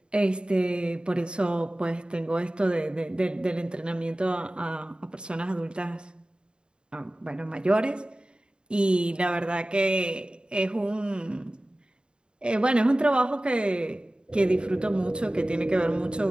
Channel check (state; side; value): late; left; 0.051 ms